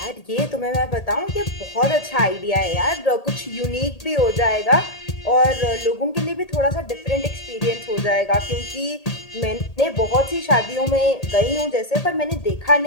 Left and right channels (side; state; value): right; late; 1.8 ms